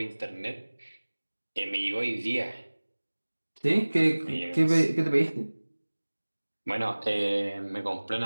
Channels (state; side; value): inverted; both; correlation -1.00